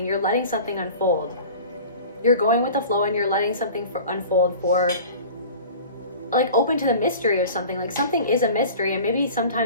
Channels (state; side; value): inverted; both; correlation -0.40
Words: You're letting something unfold. You're going with the flow, and you're letting something unfold for, like, open to the mystery of something. Like, something is a mystery, and maybe